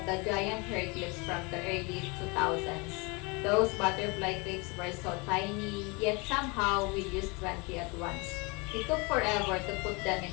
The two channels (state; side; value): quieter; right; 28.5 dB